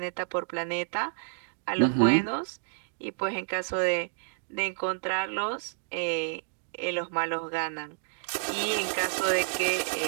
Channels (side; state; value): left; silent; digital silence